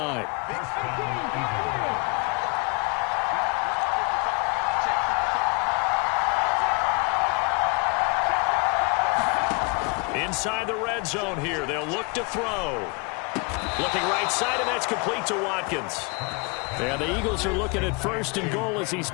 Inside the red zone here, they'll look to throw. Looking right side, and that's complete to Watkins. And the Eagles are looking at 1st and goal as he's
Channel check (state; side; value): quieter; right; 31.7 dB